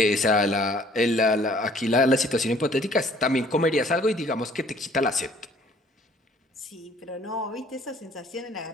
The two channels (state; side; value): normal; both; correlation 0.58